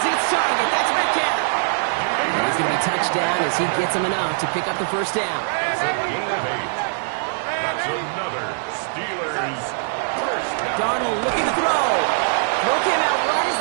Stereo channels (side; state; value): left; silent; digital silence